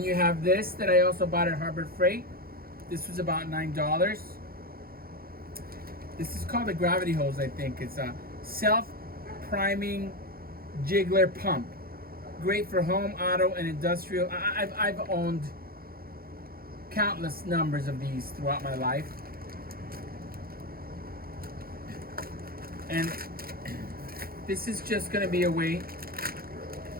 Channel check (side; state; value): left; late; 0.43 ms